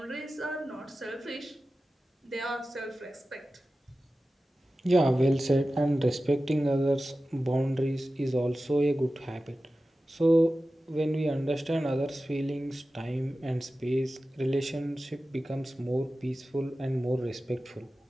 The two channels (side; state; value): both; normal; correlation 0.95